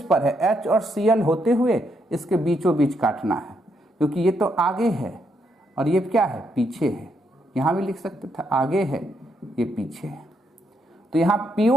पर है, H और Cl होते हुए इसके बीचों बीच काटना है, क्योंकि ये तो आगे है और ये क्या है? पीछे है। यहां भी लिख सकते थे आगे है, ये पीछे है। तो यहां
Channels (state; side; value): normal; both; correlation 0.77